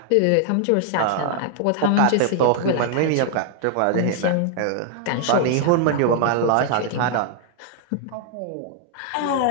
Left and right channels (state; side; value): different; both; correlation 0.00